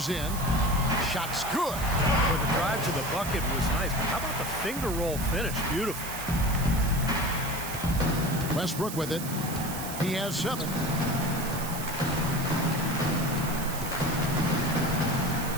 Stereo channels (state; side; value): noise; right; hiss, 9 dB below the sound